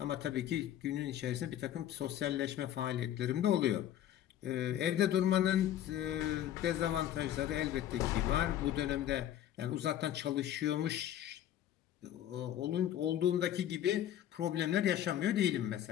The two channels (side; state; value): right; quieter; 11.5 dB